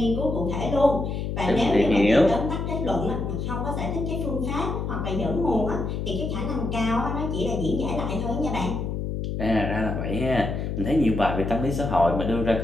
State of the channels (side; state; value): left; noise; hum, 3 dB below the sound